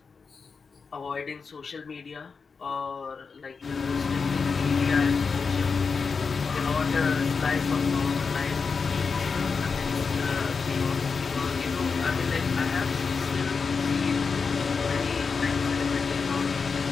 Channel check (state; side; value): quieter; right; 5.1 dB